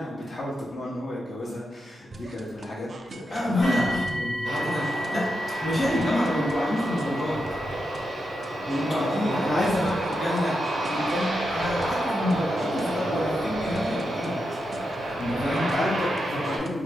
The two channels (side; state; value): both; normal; correlation 0.86